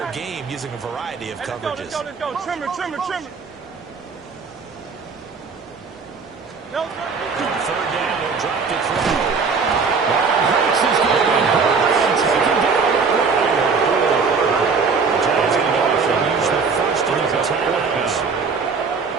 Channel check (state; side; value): quieter; left; 5.1 dB